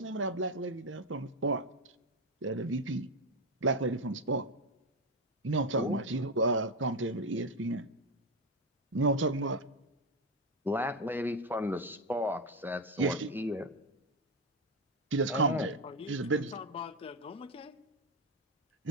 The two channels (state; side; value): normal; both; correlation 0.10